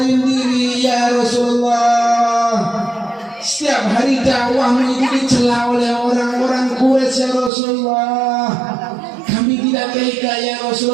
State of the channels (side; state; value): left; drops out; at 7.5 s